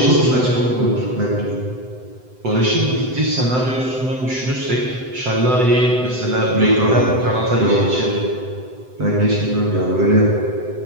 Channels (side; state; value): left; late; 7.9 ms